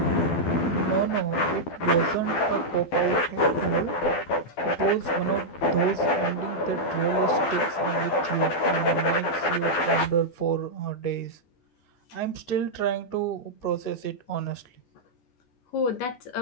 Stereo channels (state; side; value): late; right; 12 ms